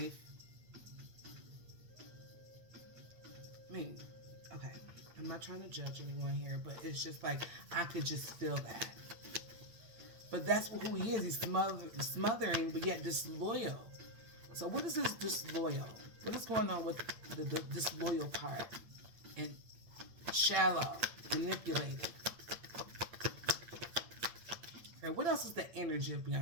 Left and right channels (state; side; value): late; left; 8.7 ms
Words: I mean, okay. I'm not trying to judge anyone here, but it's just like, I could just feel that. But that's who he is. He's smothering, but yet disloyal. So what is this disloyal? What is going on with the disloyal part? And shallow, manipulating. And what else is the energy of